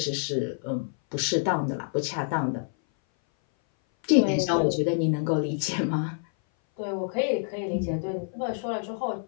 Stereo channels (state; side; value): silent; right; 58 dB below the other